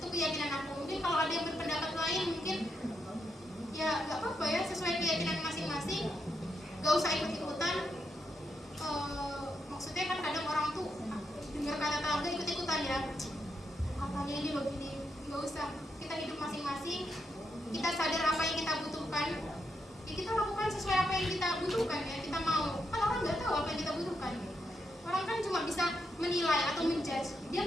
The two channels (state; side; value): normal; both; correlation 0.82